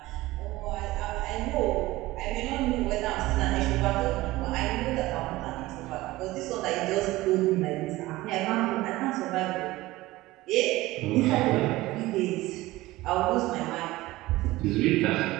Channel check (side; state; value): left; quieter; 18.4 dB